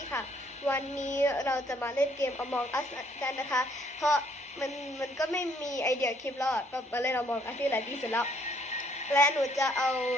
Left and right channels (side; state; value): both; normal; correlation 0.66